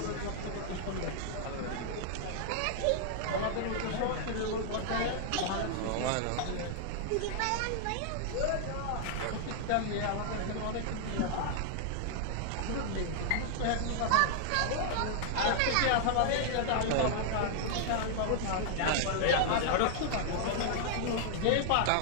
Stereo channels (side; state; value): both; different; correlation -0.01